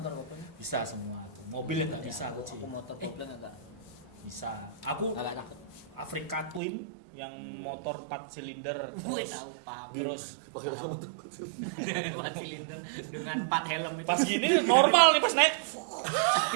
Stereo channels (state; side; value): drops out; left; at 6.6 s